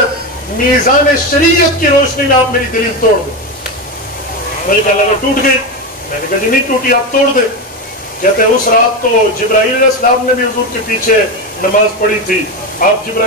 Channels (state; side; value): normal; both; correlation 0.15